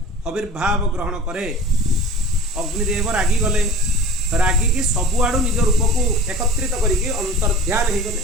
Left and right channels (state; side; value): normal; both; correlation 0.40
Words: आविर्भाव ग्रहण करे अग्निदेव रागी गले रागिकी सबुआड़ू निज रूप को एकत्रित करके अंतर्ध्यान हो गले